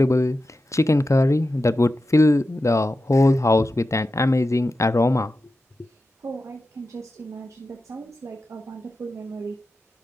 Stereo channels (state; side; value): normal; both; correlation 0.91